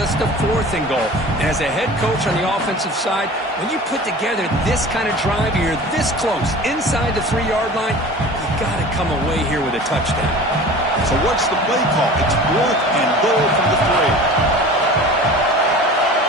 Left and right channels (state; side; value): normal; both; correlation 0.39